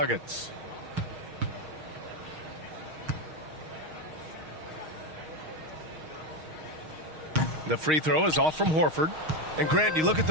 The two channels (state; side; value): late; left; 6.4 ms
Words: The free throw is off from Horford. And Grant, you look at